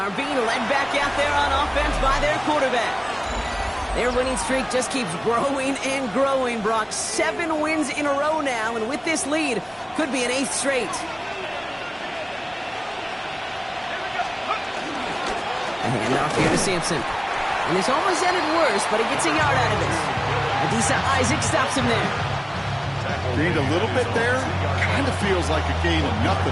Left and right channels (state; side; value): identical; both; correlation 1.00